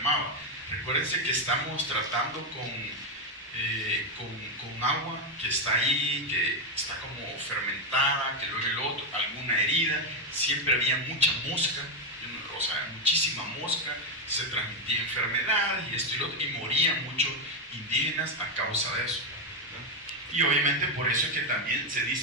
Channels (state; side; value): normal; both; correlation 0.06